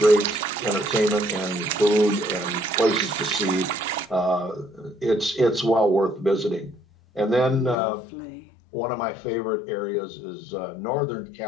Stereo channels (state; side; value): drops out; right; at 7.8 s